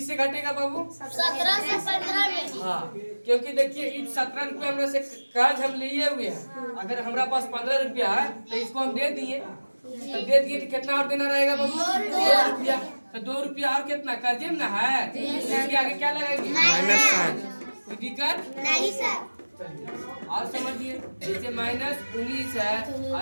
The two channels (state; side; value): inverted; both; correlation -1.00